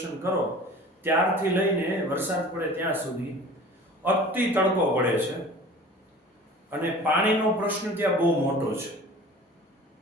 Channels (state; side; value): normal; both; correlation 0.42